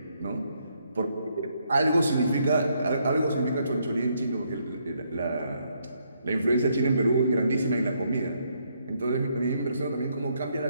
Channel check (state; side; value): inverted; both; correlation -0.74